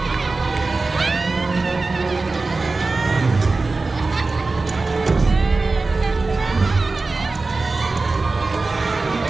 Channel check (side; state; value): left; quieter; 3.6 dB